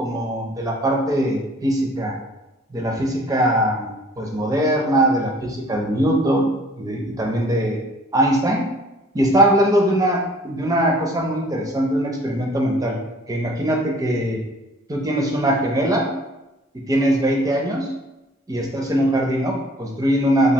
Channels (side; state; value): both; normal; correlation 0.54